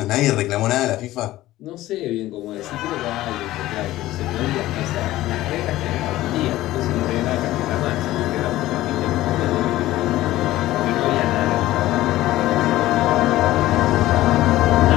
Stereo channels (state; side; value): quieter; right; 15.9 dB